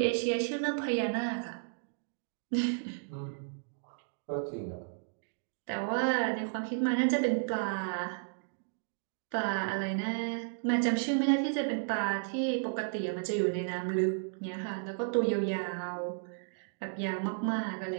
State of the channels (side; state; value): left; silent; digital silence